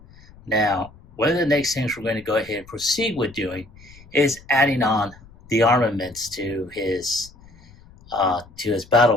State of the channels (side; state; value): left; noise; rumble, 24 dB below the sound